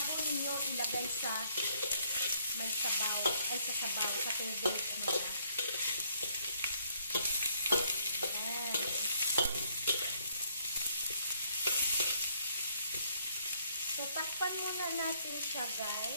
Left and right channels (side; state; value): both; inverted; correlation -0.67